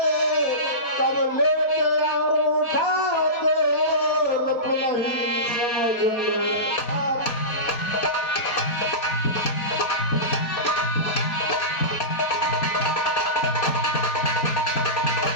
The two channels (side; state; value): right; late; 4.2 ms